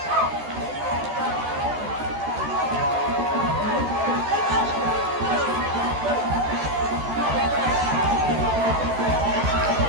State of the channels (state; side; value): late; left; 14 ms